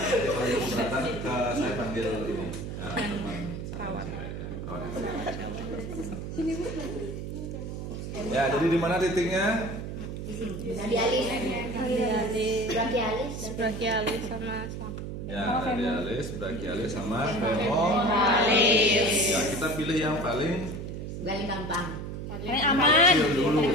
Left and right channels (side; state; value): right; noise; hum, 6 dB below the sound